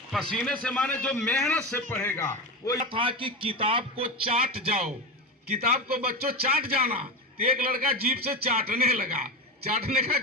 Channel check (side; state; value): both; normal; correlation 0.20